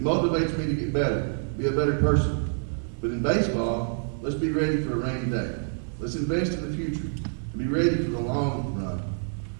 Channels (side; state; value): left; silent; digital silence